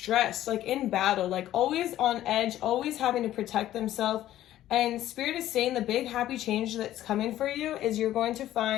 like in battle, like always on edge, always having to protect themselves. And Spirit is saying the big happy change that's coming for you is you're going to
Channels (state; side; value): quieter; right; 13.3 dB